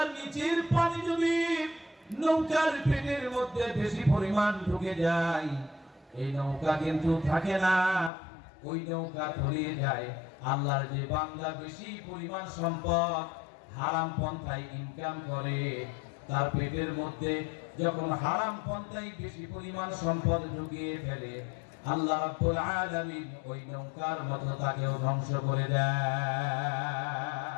নিচের পানি যদি নৌকার পেটের মধ্যে বেশি পরিমাণ ঢুকে যায়, এই নৌকা কিন্তু থাকে না, ওই নৌকা তলিয়ে যায়। আল্লাহর যে বান্দা বেশি পরিমাণ সম্পদ হারাম পন্থায় ইনকাম করে, তার পেটের মধ্যে যখন হারাম পন্থায় বেশি পরিমাণ সম্পদ ঢুকিয়ে ফেলে, আল্লাহ রাব্বুল আলামিন ওই নৌকার মতো তাকেও ধ্বংস করে দেয়।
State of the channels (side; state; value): right; drops out; at 8.1 s